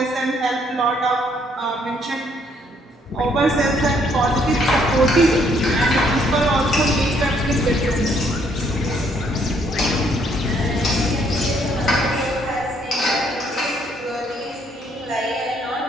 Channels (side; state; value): both; normal; correlation 0.68